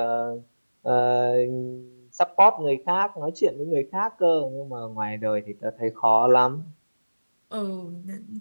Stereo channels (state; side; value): inverted; both; correlation -1.00